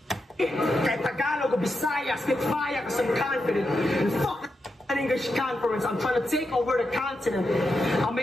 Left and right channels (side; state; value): both; normal; correlation 0.86